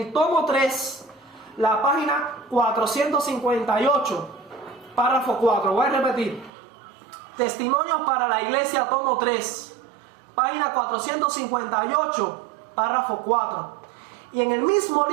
tomo 3, la página 458, párrafo 4. Voy a repetir. Testimonios para la Iglesia, tomo 3, página 458, párrafo 4. Y en el mismo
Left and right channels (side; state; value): left; drops out; at 6.5 s